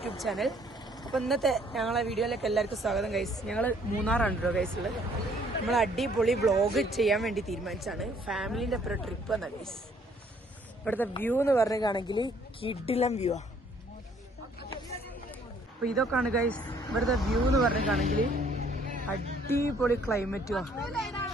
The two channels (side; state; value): both; normal; correlation 0.62